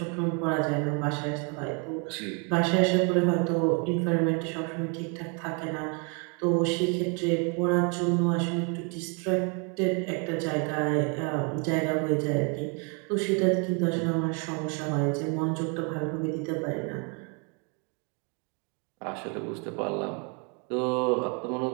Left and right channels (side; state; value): left; quieter; 35.4 dB